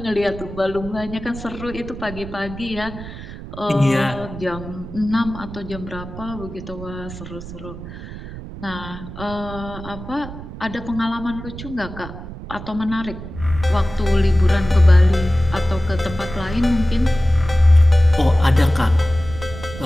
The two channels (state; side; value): noise; right; rumble, 12 dB below the sound